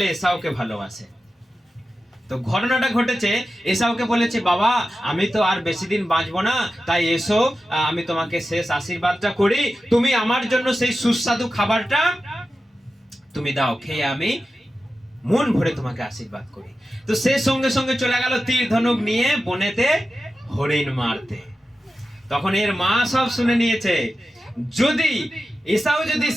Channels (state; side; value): normal; both; correlation 0.93